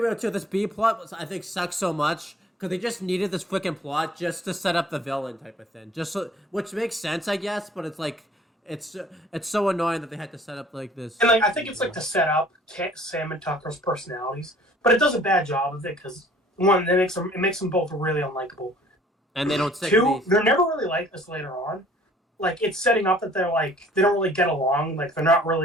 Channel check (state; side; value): normal; both; correlation 0.54